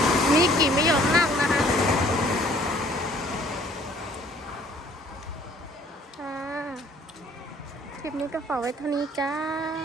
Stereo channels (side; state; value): both; normal; correlation 0.57